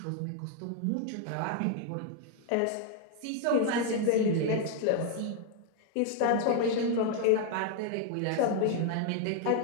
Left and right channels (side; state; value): both; different; correlation 0.00